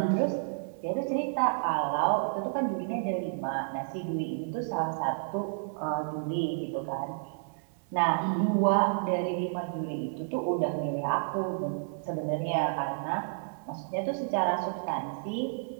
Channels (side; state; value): left; silent; 56 dB below the other